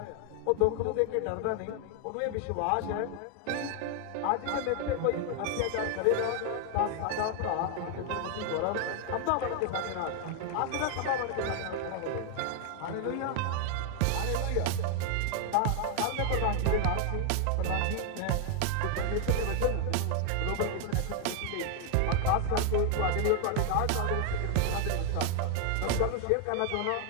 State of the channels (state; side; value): different; both; correlation 0.00